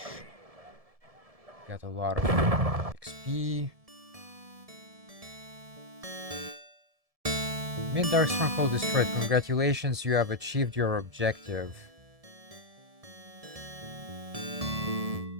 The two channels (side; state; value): left; late; 1.7 ms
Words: Got a lot of XP. Mid-Dark Stronghold destroyed. Congratulations, you have achieved your objective.